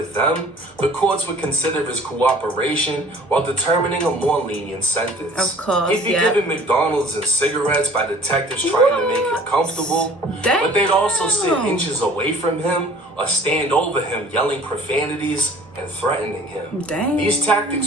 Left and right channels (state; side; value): normal; both; correlation 0.50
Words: them, the courts would consider his cooperation while determining a more lenient sentence. Of course, He'd be given McDonald's and cigarettes by detectives trying to make him comfortable, but they'd also sit inches away from him or stand over him yelling profanities and threatening him. These